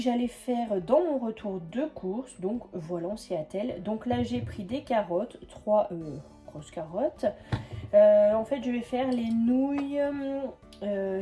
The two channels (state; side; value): identical; both; correlation 1.00